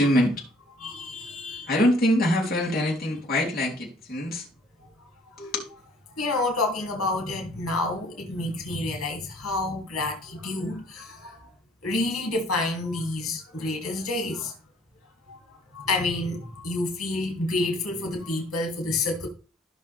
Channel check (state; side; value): normal; both; correlation 0.58